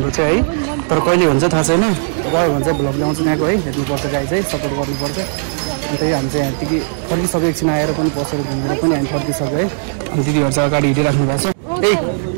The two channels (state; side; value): silent; left; digital silence